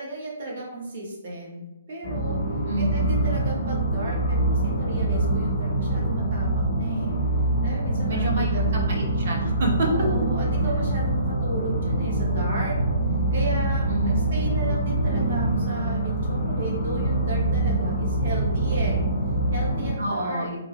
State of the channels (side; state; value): both; inverted; correlation -0.51